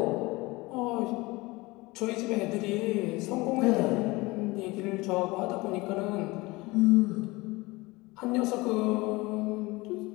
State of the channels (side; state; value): right; quieter; 22.4 dB